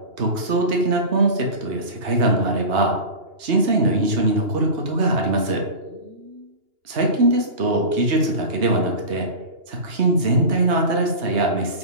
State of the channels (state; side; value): late; left; 2.8 ms